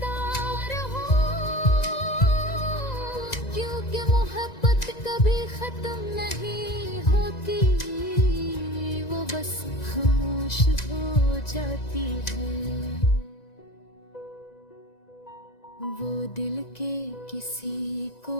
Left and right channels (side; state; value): right; late; 1.9 ms